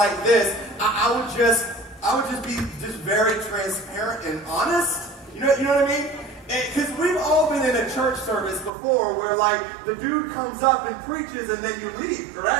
this, I would just be very transparent and honest. You know what I mean? Because we've all been in a church service before where like the dude comes up and preaches and then you leave,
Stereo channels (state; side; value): drops out; left; at 8.7 s